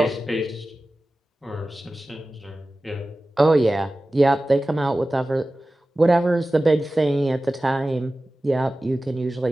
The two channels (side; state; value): both; normal; correlation 0.96